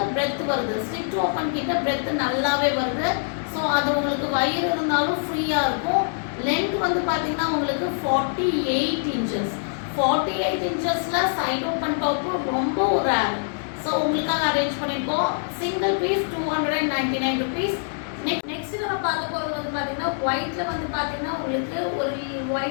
பிரெத் வருது. ஸ்லிட் ஓப்பன் கிட்ட பிரெத் நல்லாவே வருது. ஸோ அது உங்களுக்கு வயிறு இருந்தாலும் ஃப்ரீயாக இருக்கும். லென்த் வந்து பார்த்தீங்கன்னா உங்களுக்கு 48 inches. 48 inchesல சைடு ஓப்பன் டாப் ரொம்ப ஒரு ரேர். ஸோ உங்களுக்காக அரேஞ்ச் பண்ணியிருக்கோம். Single piece 299 rupees. நெக்ஸ்ட் நம்ம பார்க்க போகிறது வந்து பார்த்தீங்கன்னா ஒயிட்ல வந்து பார்த்தீங்கன்னா உங்களுக்கு ஒரு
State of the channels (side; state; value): right; silent; digital silence